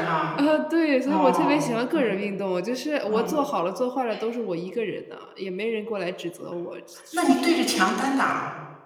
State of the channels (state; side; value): identical; both; correlation 1.00